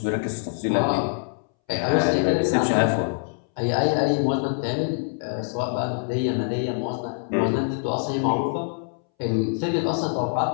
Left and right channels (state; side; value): silent; right; 62 dB below the other